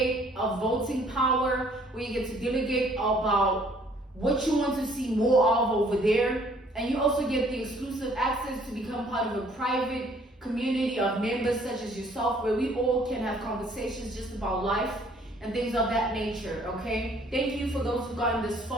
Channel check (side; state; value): both; normal; correlation 0.60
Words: a voting power where you get to delegate about what you want to see more of over there. And you also get the exclusive access to become part of a private community of members such as yourself, where we all can have conversations just about life and things of that nature, okay? Thank you for those who've gotten this